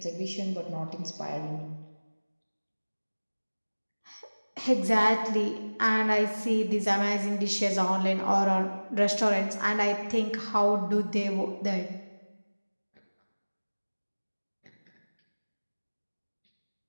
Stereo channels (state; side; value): inverted; both; correlation -1.00